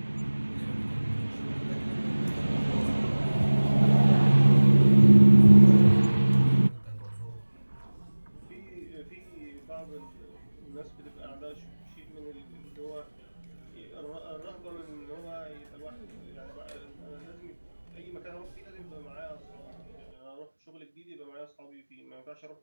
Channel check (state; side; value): inverted; both; correlation -1.00